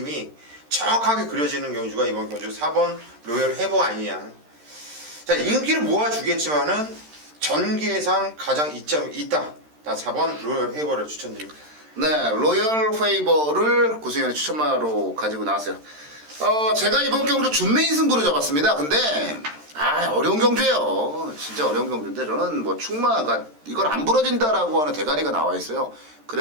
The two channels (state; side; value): late; left; 13 ms